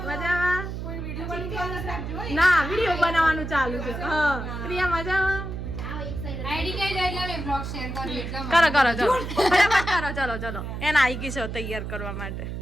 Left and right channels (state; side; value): noise; right; hum, 6 dB below the sound